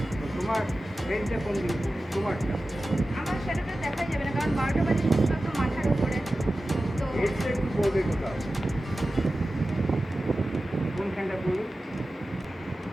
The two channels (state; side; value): normal; both; correlation 0.95